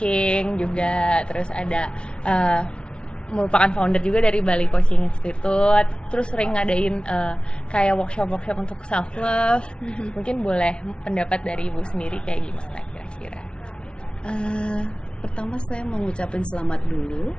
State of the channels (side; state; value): right; late; 0.057 ms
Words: juga, terus ada merupakan founder juga dari Bali Coaching Institute, terus sering ngadain kayak workshop untuk self love. Mungkin boleh pendapat dari Ibu sendiri kayak gimana kira-kira? Pertama saya mengucapkan selamat dulu